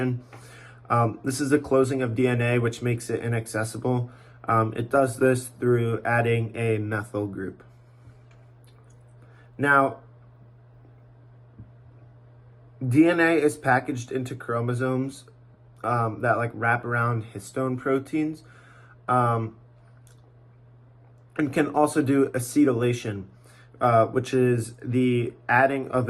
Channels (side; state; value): both; identical; correlation 1.00